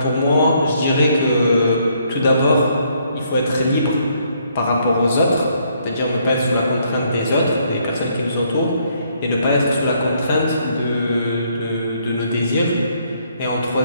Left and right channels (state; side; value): inverted; both; correlation -0.70